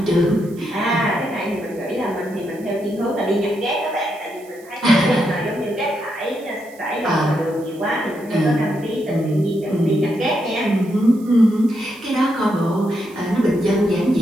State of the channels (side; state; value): right; noise; hiss, 25 dB below the sound